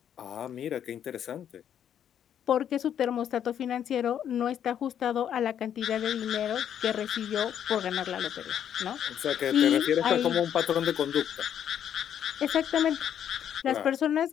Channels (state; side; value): quieter; right; 9.4 dB